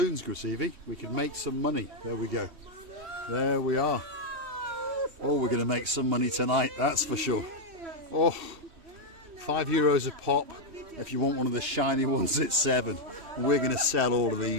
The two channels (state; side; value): late; left; 3.1 ms